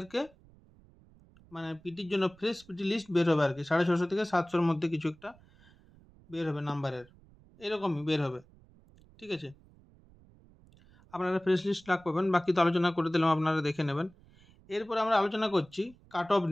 মানে পিটির জন্য ফ্রেশ পিটি লিস্ট বের হবে আর কি। 650 থেকে 700-র মধ্যে কিছু একটা বের হবে নাম্বারের, এরকমই বের হবে। ঠিক আছে, আপনারা ফ্রেশ লিস্ট লাগ পাবেন, বাকি তো আলোচনা করে দিলাম, আপনারা দেখে নেবেন। এরপর আমরা আলোচনা করছি কাট অফ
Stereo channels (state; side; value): noise; right; rumble, 27 dB below the sound